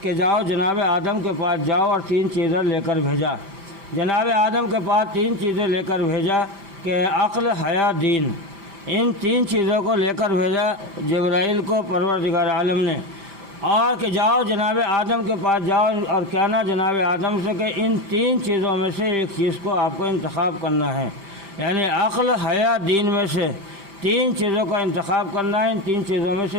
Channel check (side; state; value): left; late; 5.0 ms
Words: کہ جاؤ جناب آدم کے پاس جاؤ اور 3 چیزیں لے کر بھیجا۔ جناب آدم کے پاس 3 چیزیں لے کر بھیجا کہ عقل، حیا، دین، ان 3 چیزوں کو لے کر بھیجا جبرائیل کو پروردگار عالم نے، اور کہ جاؤ جناب آدم کے پاس جاؤ اور کہنا جناب آدم سے کہ ان 3 چیزوں میں سے ایک چیز کو آپ کو انتخاب کرنا ہے، یعنی عقل، حیا، دین میں سے 3 چیزوں کا انتخاب کرنا ہے، ان 3 چیزوں میں سے